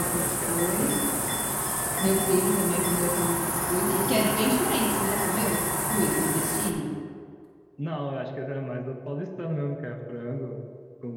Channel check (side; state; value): both; identical; correlation 1.00